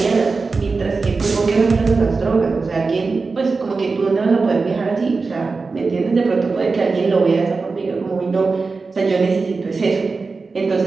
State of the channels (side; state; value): left; quieter; 4.2 dB